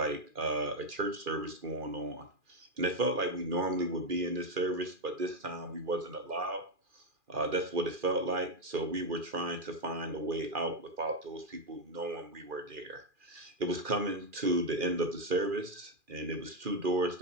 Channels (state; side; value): late; left; 2.4 ms